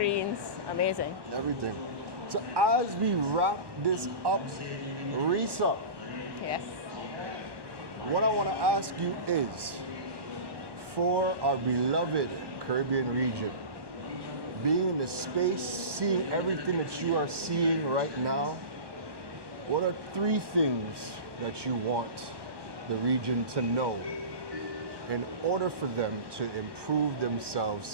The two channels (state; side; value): late; left; 1.2 ms